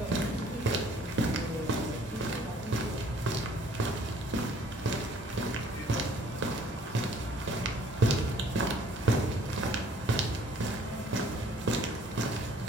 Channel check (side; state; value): both; normal; correlation 0.57